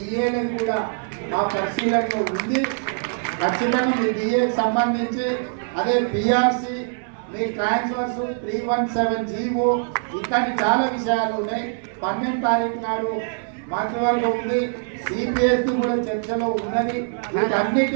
కూడా మా పరిశీలనలో ఉంది. ఖచ్చితంగా మీ డిఏకి సంబంధించి అదే పిఆర్సి మీ ట్రాన్స్ఫర్స్ 317 జీవో ఇట్లాంటి చాలా విషయాలు ఉన్నాయి. 12 తారీఖు నాడు మంత్రివర్గం ఉంది, సిపిఎస్ కూడా చర్చలో ఉన్నది.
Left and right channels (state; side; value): silent; left; 63 dB below the other